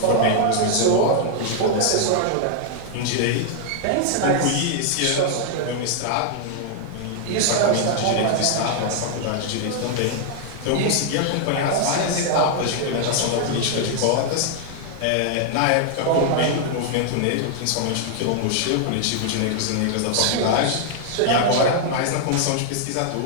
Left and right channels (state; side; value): different; both; correlation -0.01